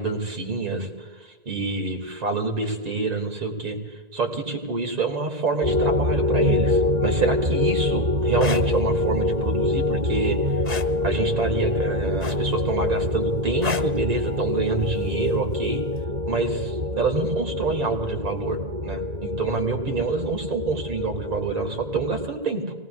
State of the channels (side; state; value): left; late; 1.9 ms